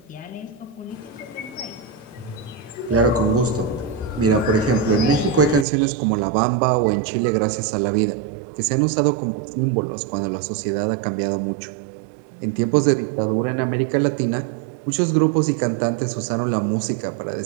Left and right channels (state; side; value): drops out; left; at 5.7 s